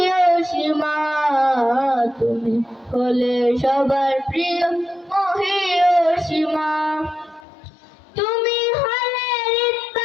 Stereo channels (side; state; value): right; drops out; at 7.5 s